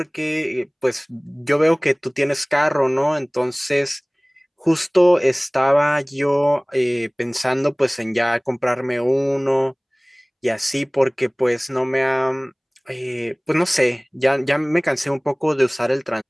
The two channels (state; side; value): identical; both; correlation 1.00